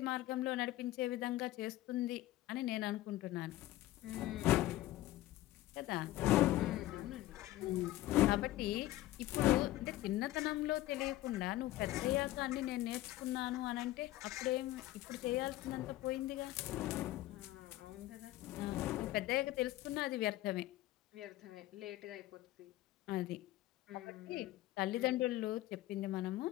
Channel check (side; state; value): right; quieter; 16.0 dB